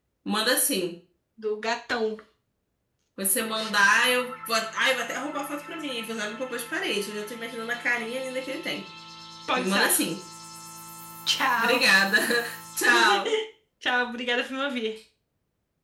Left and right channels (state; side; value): identical; both; correlation 1.00